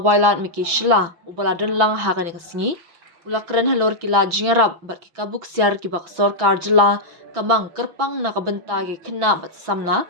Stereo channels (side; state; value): left; late; 6.0 ms